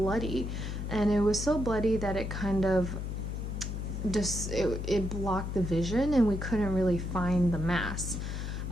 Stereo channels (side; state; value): left; noise; hum, 4 dB below the sound